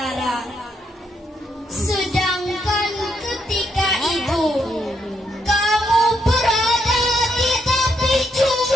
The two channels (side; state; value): both; normal; correlation 0.78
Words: Sedangkan ketika itu kamu berada di tepi